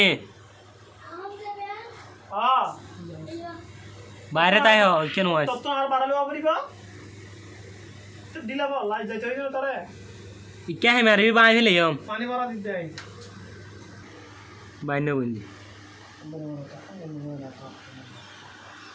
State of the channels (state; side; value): identical; both; correlation 1.00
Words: বাইরে তাই কেন হয় তত আর বাড়ালে পারিবা দিলা বল লাই যাইতে হইলো তোরে ইকা হে মারবি বাই ফেলে পানি ভরা দিতে আই বাইন বন্ধি